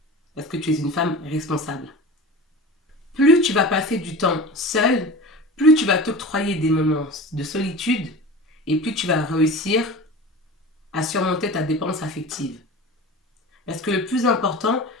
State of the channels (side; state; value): both; normal; correlation 0.33